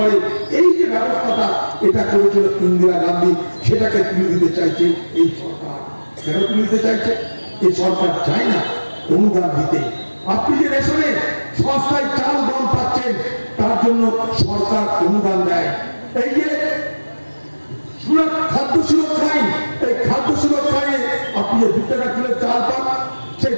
এই যে ব্যবস্থাটা এটা করেছিল ইন্দিরা গান্ধী, সেটাকে তুলে দিতে চাইছে এই সরকার। কেন তুলে দিতে চাইছে? এই সরকার চায় না অনুদান দিতে। আপনি যে রেশনে সস্তায় চাল, গম পাচ্ছেন, তার জন্য সরকার অনুদান দেয়। এই যে খাদ্য সুরক্ষা আইন, এই খাদ্য সুরক্ষা আইনে আপনি যে 2 টাকা কিলো চাল পান, সেই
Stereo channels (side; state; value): both; inverted; correlation -1.00